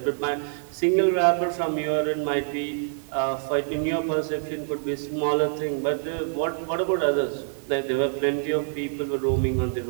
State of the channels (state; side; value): silent; left; digital silence